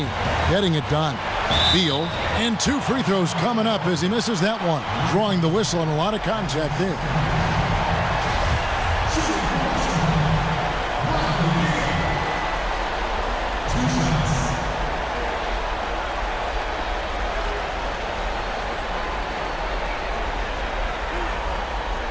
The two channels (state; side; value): identical; both; correlation 1.00